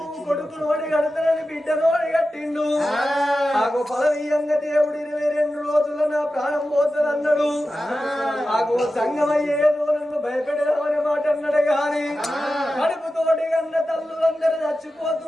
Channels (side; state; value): both; normal; correlation 0.93